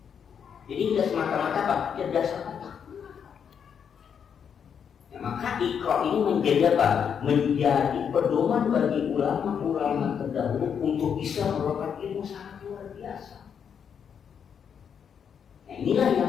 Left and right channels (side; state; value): right; quieter; 7.5 dB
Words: Jadi tidak semata-mata apa? Kecerdasan otak. Ya, maka Iqra ini menjadi apa? Menjadi pedoman bagi ulama-ulama terdahulu untuk bisa melakukan ilmu sangat luar biasa. Nah, inilah